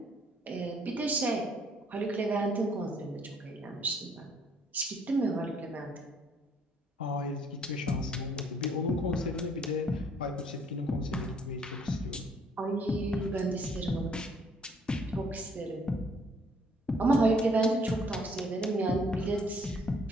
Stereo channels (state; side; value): normal; both; correlation 0.63